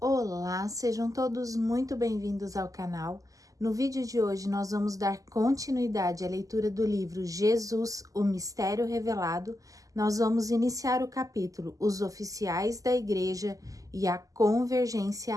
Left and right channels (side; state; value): left; late; 0.17 ms